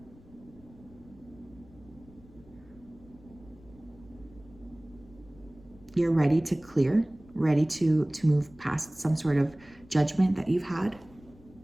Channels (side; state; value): left; noise; rumble, 24 dB below the sound